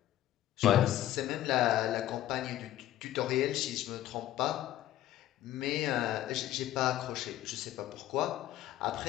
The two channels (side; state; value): right; quieter; 13.4 dB